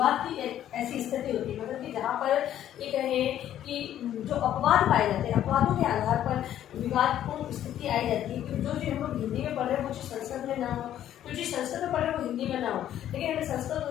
की ऐसी स्थिति होती है, मतलब कि जहाँ पर ये कहें कि जो अपवाद पाए जाते हैं, अपवादों के आधार पर विवादपूर्ण स्थिति आई जाती है कि जो चीज़ हम लोग हिंदी में पढ़ रहे हैं वो चीज़ संस्कृत में ना हो, जो चीज़ संस्कृत में पढ़ रहे हैं वो हिंदी में ना हो। लेकिन हमें संस्कृत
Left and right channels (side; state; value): right; quieter; 11.4 dB